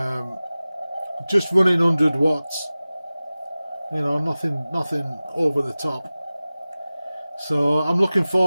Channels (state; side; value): inverted; both; correlation -0.97